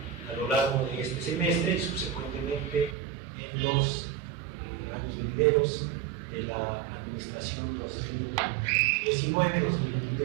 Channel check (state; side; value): drops out; left; at 3.0 s